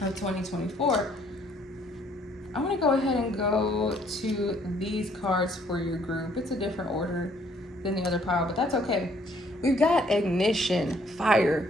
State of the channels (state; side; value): normal; both; correlation 0.64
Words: of 2024. I'm going to go ahead and go to these cards for your group. It's a different order than the other pile, but that's okay. We've got ignition,